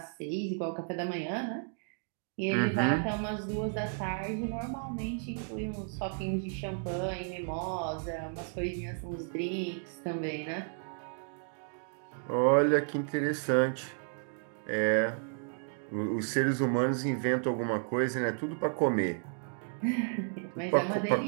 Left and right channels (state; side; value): silent; left; 56 dB below the other